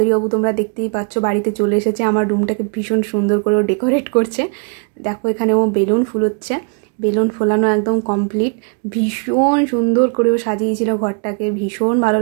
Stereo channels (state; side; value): quieter; left; 38.9 dB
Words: তোমরা দেখতেই পাচ্ছ বাড়িতে চলে এসেছে। আমার রুমটাকে ভীষণ সুন্দর করে ডেকোরেট করছে। দেখো এখানে ও বেলুন ফুলোচ্ছে। বেলুন ফোলানো একদম কমপ্লিট। ভীষণ সুন্দর করেও সাজিয়েছিল ঘরটাকে। ভীষণ ভালো